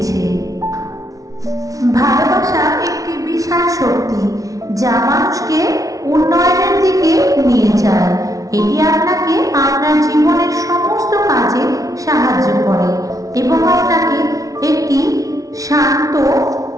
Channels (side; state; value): left; late; 0.17 ms